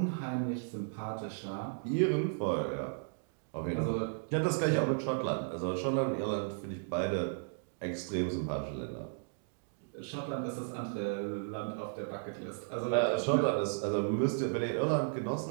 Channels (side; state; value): left; silent; digital silence